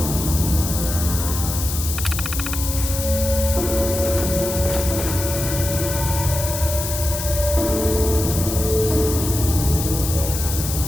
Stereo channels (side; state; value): left; noise; hiss, 5 dB below the sound